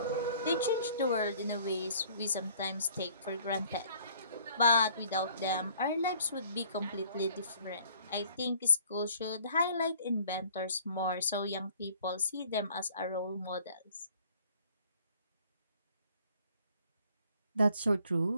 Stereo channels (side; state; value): both; inverted; correlation -0.56